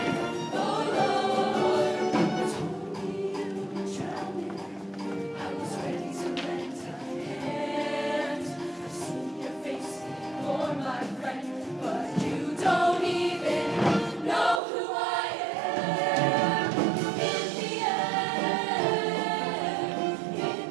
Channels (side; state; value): left; drops out; at 14.6 s